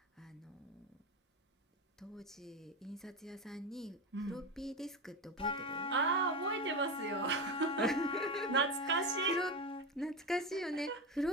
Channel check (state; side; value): normal; both; correlation 0.18